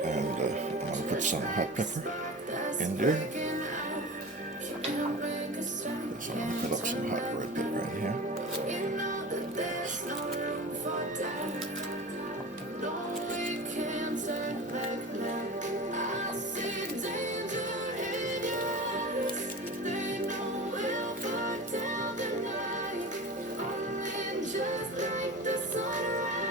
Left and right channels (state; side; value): normal; both; correlation 0.32